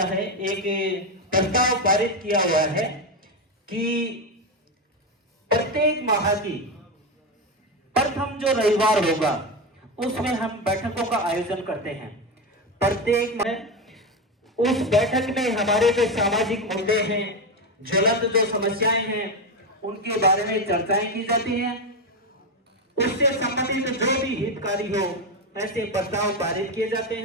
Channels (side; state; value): both; normal; correlation 0.13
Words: है, एक प्रस्ताव पारित किया हुआ है कि प्रत्येक माह की प्रथम जो रविवार होगा उसमें हम बैठकों का आयोजन करते हैं। प्रत्येक माह उस बैठक में हमारे जो सामाजिक मुद्दे हैं, ज्वलंत जो समस्याएं हैं, उनके बारे में चर्चाएं की जाती हैं। उससे संबंधित जो भी हितकारी हो, ऐसे प्रस्ताव पारित किए जाते